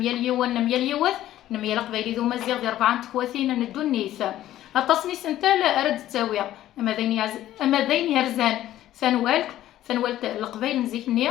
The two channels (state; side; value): quieter; right; 13.4 dB